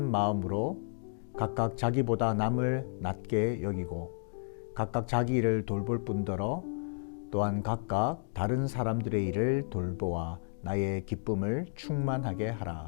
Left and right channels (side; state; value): right; silent; digital silence